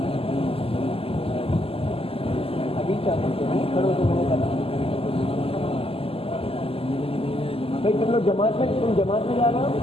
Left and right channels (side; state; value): right; late; 0.28 ms